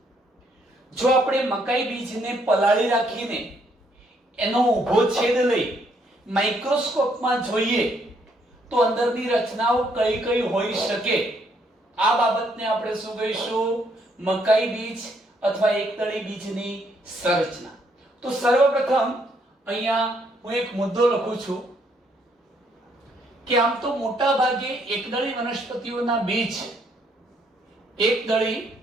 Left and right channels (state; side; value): normal; both; correlation 0.71